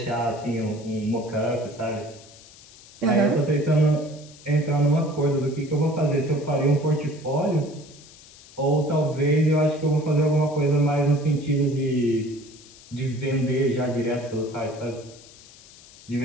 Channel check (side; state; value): left; noise; hiss, 22 dB below the sound